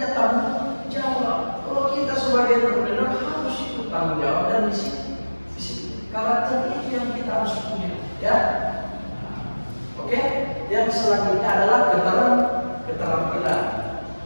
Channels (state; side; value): inverted; both; correlation -1.00